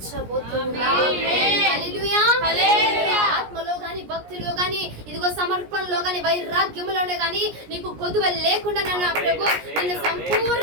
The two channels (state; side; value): late; left; 17 ms